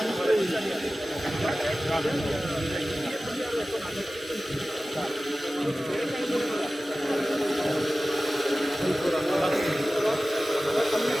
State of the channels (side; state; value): both; normal; correlation 0.96